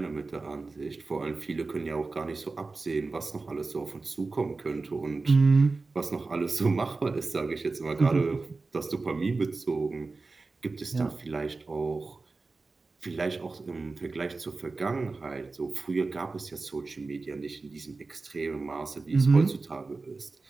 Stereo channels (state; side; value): quieter; left; 3.8 dB